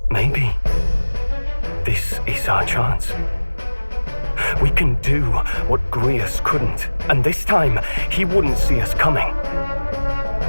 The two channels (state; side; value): inverted; both; correlation -1.00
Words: Maybe this is our chance. We can do what Grius couldn't, and this time he wouldn't see us coming.